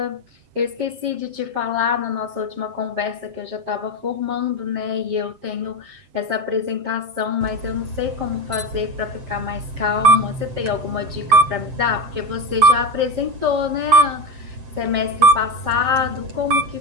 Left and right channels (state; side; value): late; left; 7.5 ms